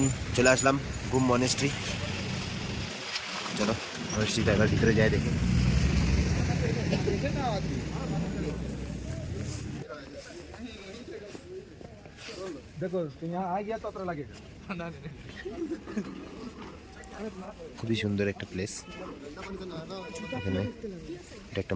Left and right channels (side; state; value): both; identical; correlation 1.00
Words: চলে আসলাম গুম মনেস্ট্রি। চলো মনেস্ট্রিটা এবার ভিতরে যাই দেখি। देखो तो यहाँ आ गया तो अतरा लगेगा। খুবই সুন্দর একটা প্লেস। এখানে এটা একটা